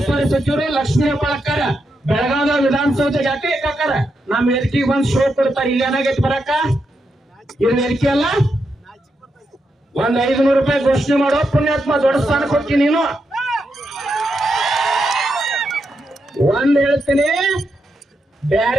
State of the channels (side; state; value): both; normal; correlation 0.84